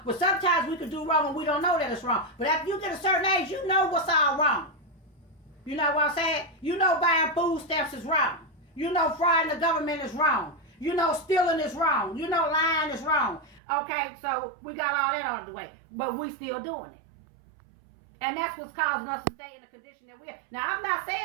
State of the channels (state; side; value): drops out; left; at 13.6 s